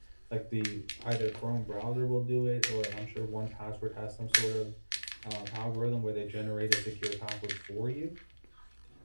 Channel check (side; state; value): both; inverted; correlation -1.00